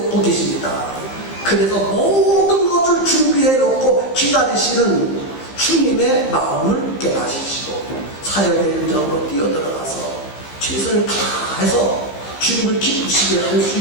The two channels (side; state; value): right; late; 15 ms